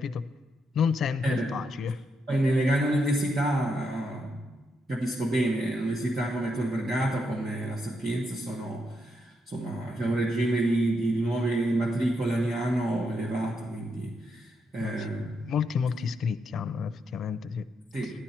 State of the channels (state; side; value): normal; both; correlation 0.80